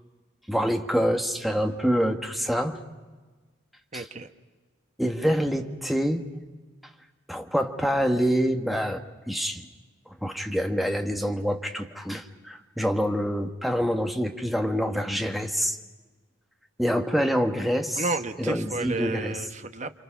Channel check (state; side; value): normal; both; correlation 0.89